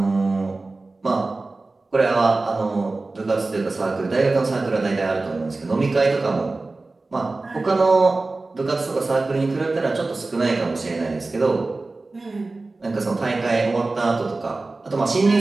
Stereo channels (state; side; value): quieter; left; 3.4 dB